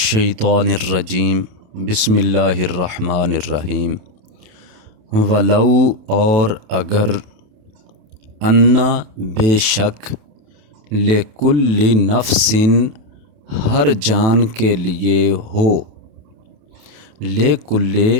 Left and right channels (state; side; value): late; left; 28 ms